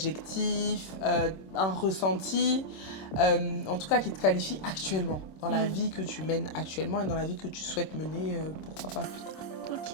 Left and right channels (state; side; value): late; right; 26 ms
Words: un ressenti, en tout cas qui te qualifie actuellement, dans la vie que tu mènes actuellement et dans la vie que tu souhaites mener, pourquoi pas plus tard.